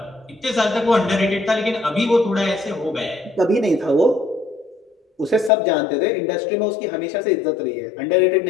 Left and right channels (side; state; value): right; drops out; at 5.5 s